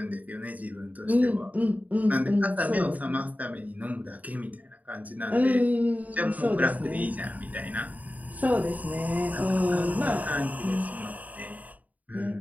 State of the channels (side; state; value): left; late; 0.074 ms